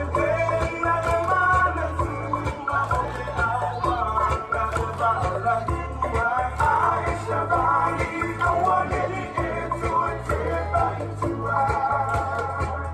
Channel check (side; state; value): both; identical; correlation 1.00